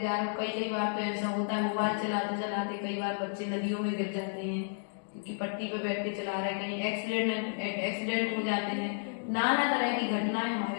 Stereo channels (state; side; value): silent; right; digital silence